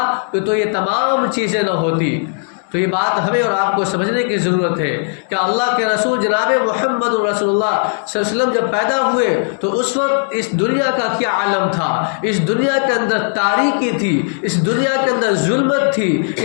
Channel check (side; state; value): right; silent; 61 dB below the other